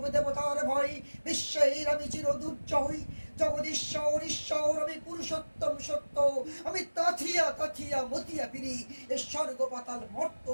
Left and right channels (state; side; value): inverted; both; correlation -1.00